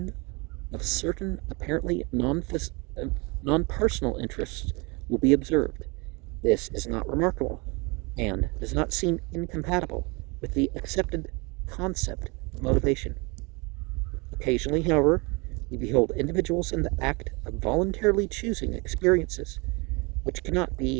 of certain apparently non-personal interests will be observed. This is not remarkable, and does not seem incompatible with the accepted concept of motivation. Occasionally, however, we behold individuals in the act of voluntarily choosing experiences which cannot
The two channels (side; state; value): left; quieter; 28.5 dB